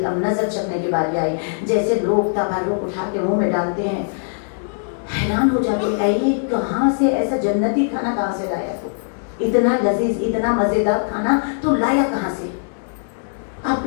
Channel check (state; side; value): silent; right; digital silence